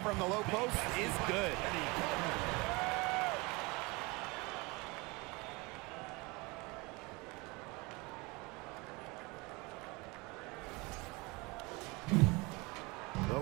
from the low post is good. The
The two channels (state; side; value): quieter; left; 25.7 dB